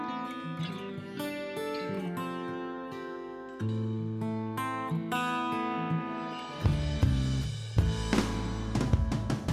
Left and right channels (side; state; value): both; identical; correlation 1.00